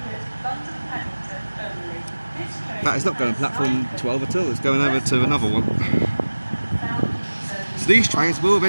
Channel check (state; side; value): inverted; both; correlation -1.00